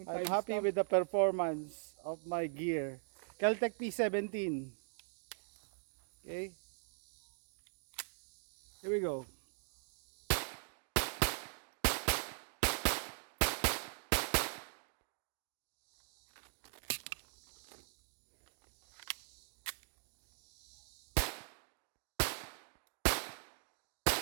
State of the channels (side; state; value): left; silent; digital silence